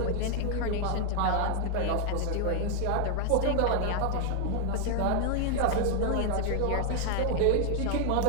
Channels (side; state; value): both; different; correlation 0.00